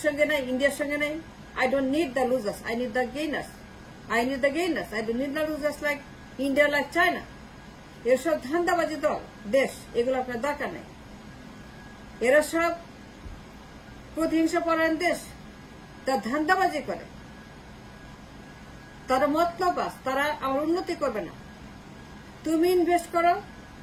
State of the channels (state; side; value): identical; both; correlation 1.00